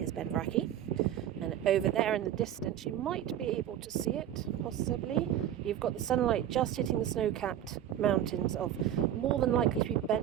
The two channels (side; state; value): left; quieter; 10.9 dB